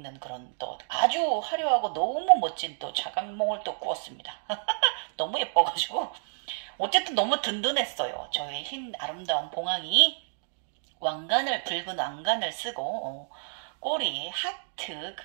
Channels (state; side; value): silent; left; digital silence